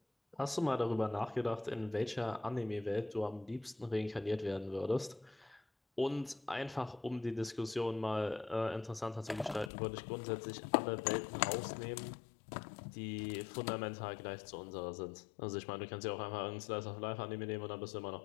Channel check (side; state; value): right; drops out; at 9.7 s